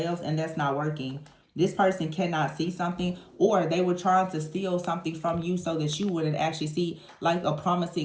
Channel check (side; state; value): both; identical; correlation 1.00